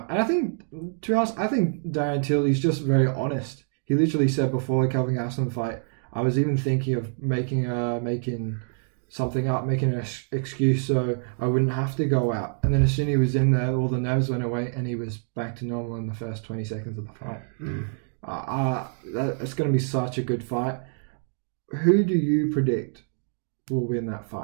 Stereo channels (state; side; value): silent; left; 61 dB below the other